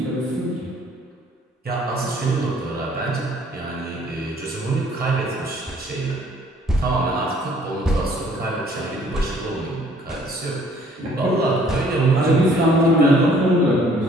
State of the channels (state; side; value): normal; both; correlation 0.59